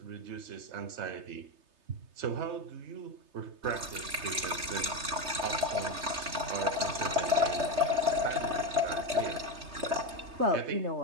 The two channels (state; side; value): late; left; 3.3 ms